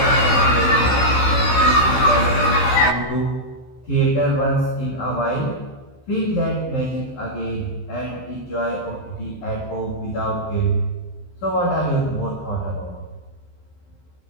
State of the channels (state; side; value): late; right; 15 ms